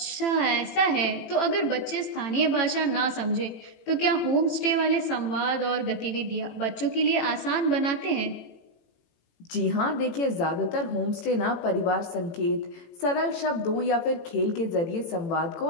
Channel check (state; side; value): late; right; 18 ms